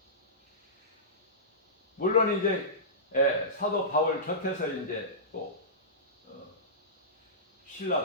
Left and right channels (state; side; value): normal; both; correlation -0.18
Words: 물론 이제 사도 바울 곁에서 이제 또